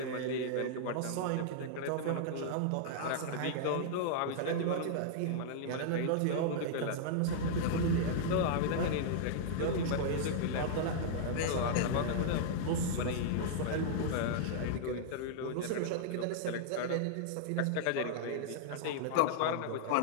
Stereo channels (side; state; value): both; different; correlation -0.01